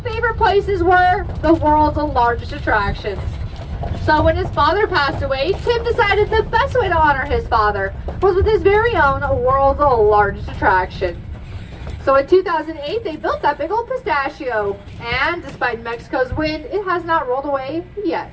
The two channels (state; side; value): identical; both; correlation 1.00